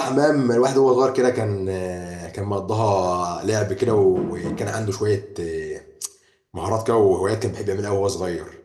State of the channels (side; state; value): both; identical; correlation 1.00